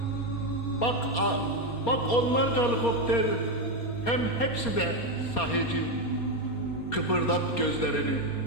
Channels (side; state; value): right; late; 4.3 ms